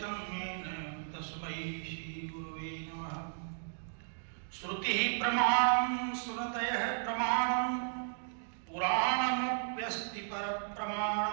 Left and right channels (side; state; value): left; silent; digital silence